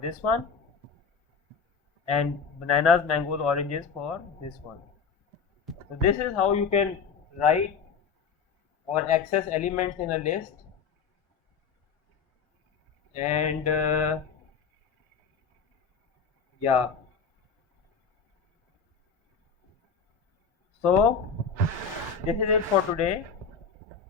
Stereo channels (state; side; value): quieter; right; 5.9 dB